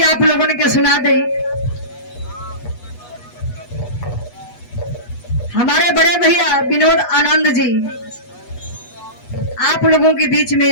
आप लोगों ने के सुना दे। हमारे बड़े भैया विनोद आनंद जी आप लोगों के बीच में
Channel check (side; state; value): right; late; 8.2 ms